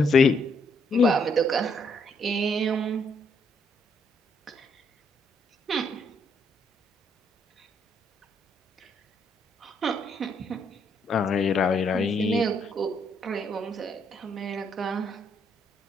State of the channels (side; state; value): both; normal; correlation 0.72